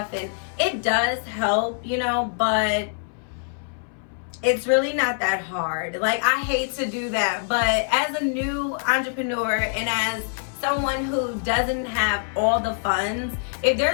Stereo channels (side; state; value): right; silent; 60 dB below the other